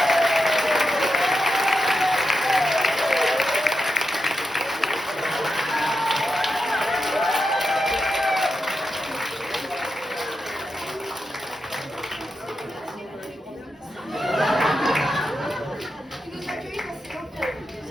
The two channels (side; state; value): both; normal; correlation 0.87